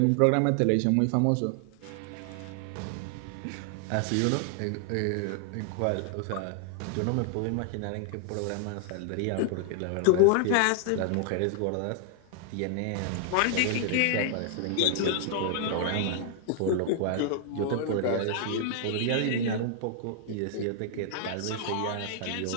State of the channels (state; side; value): different; both; correlation 0.00